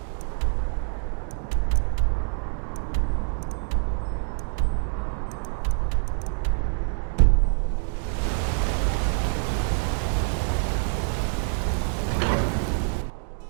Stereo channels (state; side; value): silent; left; 61 dB below the other